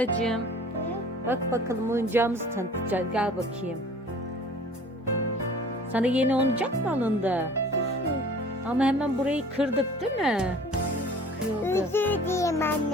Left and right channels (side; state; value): both; normal; correlation 0.47